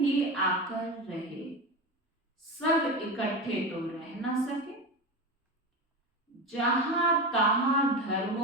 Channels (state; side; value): normal; both; correlation 0.22